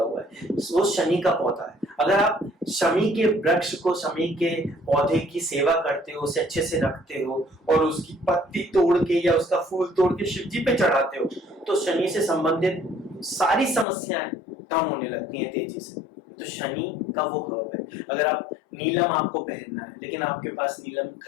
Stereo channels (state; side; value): drops out; right; at 13.9 s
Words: हुआ है, वो शनि का पौधा है। अगर आप शमी के वृक्ष को, शमी के पौधे की सेवा करते हो, उसे अच्छे से रखते हो, और उसकी पत्ती तोड़ के या उसका फूल तोड़ के शिव जी पे चढ़ाते हो, तो शनि से संबंधित सारी समस्याएं कम होने लगती हैं तेजी से। तो शनि का वो हर्ब है। अगर आप नीलम आपको पहनना है लेकिन आपके पास नीलम